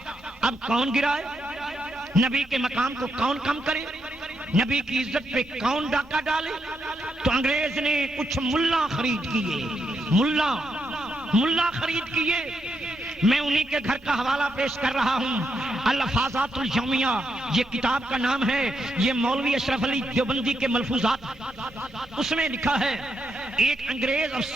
اب کون گرائے، نبی کے مقام کو کون کم کرے، نبی کی عزت پہ کون ڈاکہ ڈالے۔ تو انگریز نے کچھ ملا خرید کیے، ملا خرید کیے۔ میں انہی کے گھر کا حوالہ پیش کر رہا ہوں، الفاظات الیومیہ یہ کتاب کا نام ہے، یہ مولوی اشرف علی دیوبندی کے ملفوظات۔ اس میں لکھا ہے ایک انگریز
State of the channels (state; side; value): normal; both; correlation 0.81